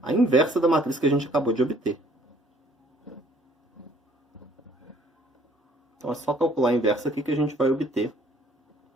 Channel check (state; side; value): normal; both; correlation 0.60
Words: a inversa da matriz que a gente acabou de obter. Então é só calcular a inversa aqui que a gente vai obter